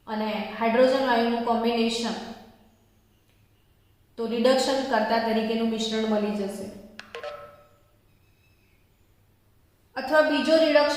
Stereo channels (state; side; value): identical; both; correlation 1.00